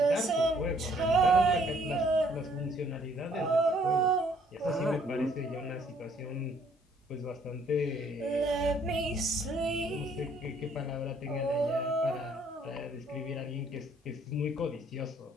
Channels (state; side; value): normal; both; correlation 0.63